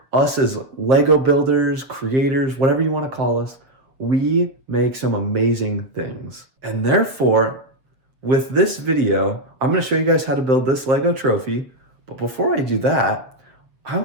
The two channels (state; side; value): late; left; 7.6 ms